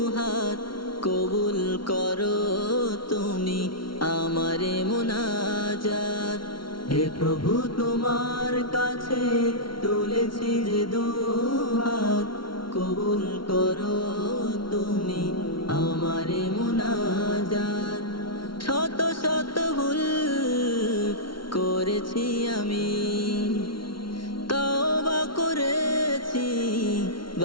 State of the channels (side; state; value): right; late; 0.73 ms